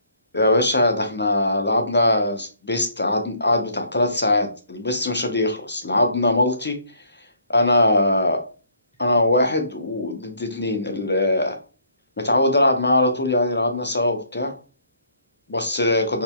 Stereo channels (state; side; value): inverted; both; correlation -0.64